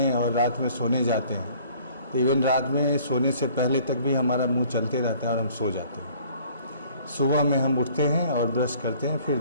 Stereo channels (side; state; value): both; inverted; correlation -0.55